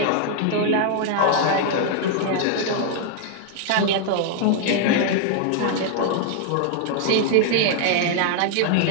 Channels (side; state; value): both; different; correlation 0.00